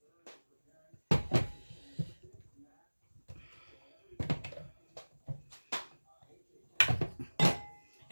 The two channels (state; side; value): inverted; both; correlation -1.00